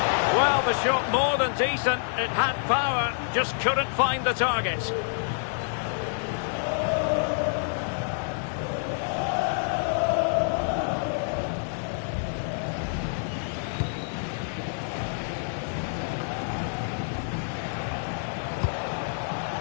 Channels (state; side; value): silent; right; digital silence